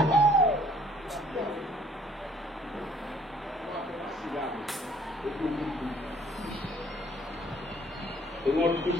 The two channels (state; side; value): normal; both; correlation 0.59